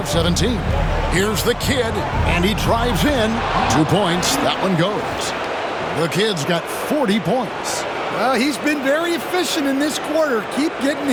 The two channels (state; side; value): identical; both; correlation 1.00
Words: 17. Here's the kid, and he drives in. 2 points. That one goes. The kid's got 40 points. Well, he's been very efficient in this quarter. Keep getting